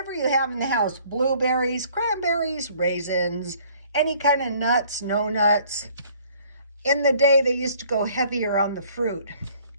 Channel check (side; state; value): both; inverted; correlation -0.57